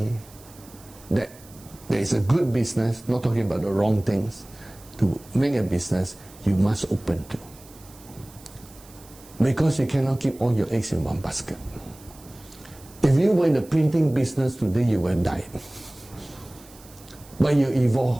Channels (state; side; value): noise; right; hiss, 23 dB below the sound